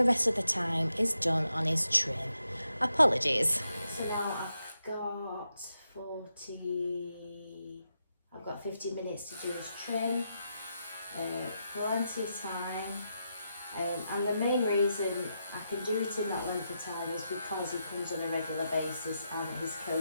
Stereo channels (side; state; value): both; inverted; correlation -0.85